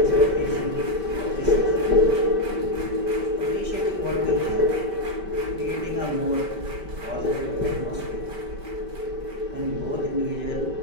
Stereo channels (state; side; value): late; left; 5.2 ms